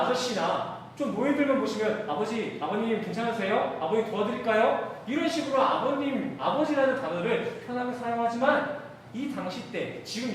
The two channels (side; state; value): both; identical; correlation 1.00